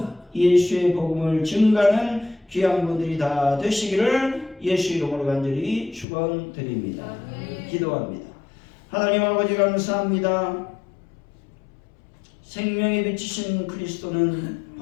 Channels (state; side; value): drops out; right; at 6.1 s